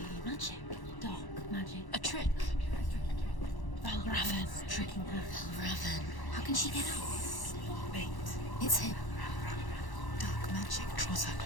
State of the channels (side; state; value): right; late; 1.1 ms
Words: magic. Dark magic. A trick. Raven tricking her. Raven. How can she get up? Wait. It's him. Dark magic draws her